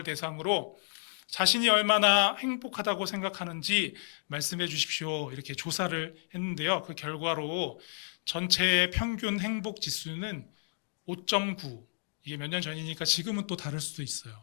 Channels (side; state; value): right; silent; digital silence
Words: 대상으로 자신이 얼마나 행복하다고 생각하는지 말씀해 주십시오. 이렇게 조사를 했는데요. 그 결과로 전체의 평균 행복 지수는 5.9. 이게 몇 년 전이니까 지금은 또 다를 수도 있어요.